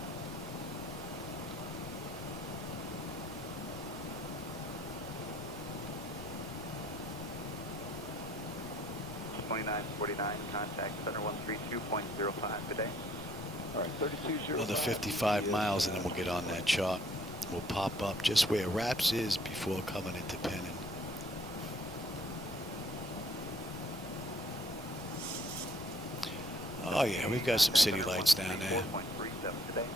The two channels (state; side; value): normal; both; correlation 0.61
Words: 2949, contact center 132.05 today. All right, 3205. Another 55 miles and then we'll get on that chart. We'll pop up just where Raps is before coming into Penn. Oh yeah, we've got some city lights down there. 4.37 today.